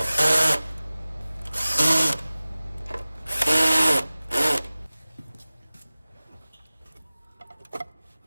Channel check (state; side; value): inverted; both; correlation -0.97